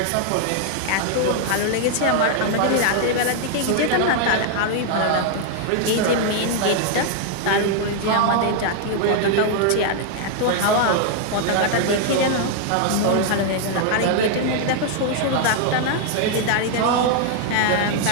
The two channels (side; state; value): both; different; correlation 0.00